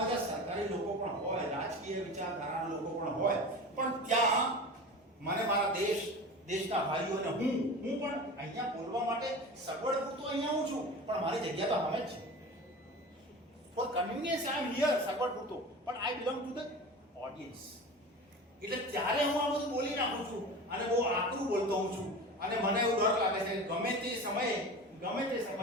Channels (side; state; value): both; normal; correlation 0.33